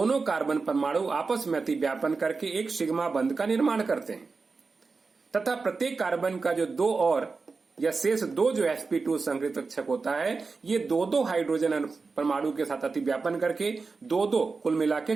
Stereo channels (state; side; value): quieter; left; 4.3 dB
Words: कार्बन परमाणु आपस में अतिव्यापन करके एक सिग्मा बंध का निर्माण करते हैं, तथा प्रत्येक कार्बन का जो 2 और या शेष 2 जो sp2 संकरित कक्षक होता है, ये 2 हाइड्रोजन परमाणु के साथ अतिव्यापन करके 2 कुल मिला के